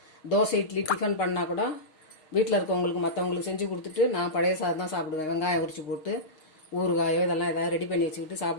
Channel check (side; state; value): right; late; 6.4 ms